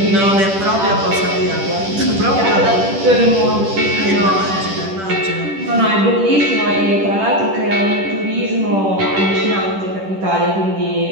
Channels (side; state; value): left; late; 10 ms